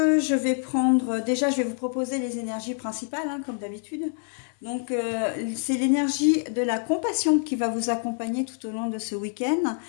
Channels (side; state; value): right; silent; 61 dB below the other